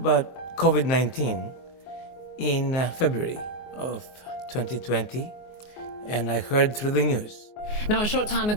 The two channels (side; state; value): right; late; 24 ms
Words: COVID-19 in February of 2020, and I heard through the news. Now, a short time